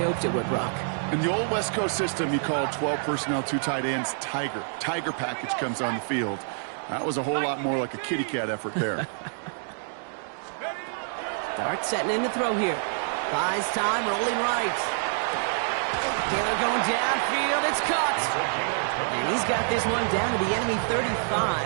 hoped it would, Brock. In the old West Coast system, you called 12 personnel, 2 tight ends, Tiger. Tiger package comes on the field. That was a whole lot more like a kitty cat effort there. Dart setting in to throw here. Buys time, rolling right. Taylor going downfield, it's caught. And he's got this one down to the enemy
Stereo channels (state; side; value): silent; left; digital silence